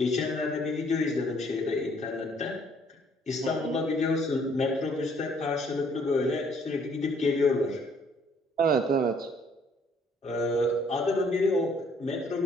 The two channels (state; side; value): normal; both; correlation 0.63